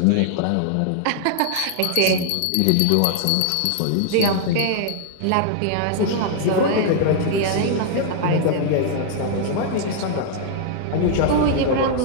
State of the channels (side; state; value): both; different; correlation -0.01